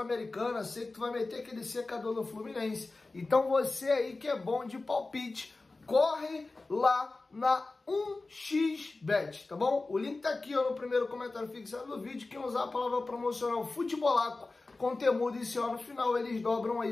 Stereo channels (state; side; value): quieter; right; 3.4 dB